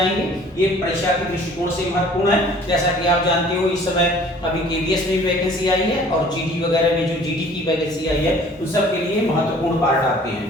ये परीक्षा के दृष्टिकोण से महत्वपूर्ण है। जैसा कि आप जानते हो इस समय अभी केवीएस में भी वैकेंसी आई है और जीडी वगैरह में जो जीडी की वैकेंसी आई है उन सब के लिए महत्वपूर्ण पार्ट आपके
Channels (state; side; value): normal; both; correlation 0.51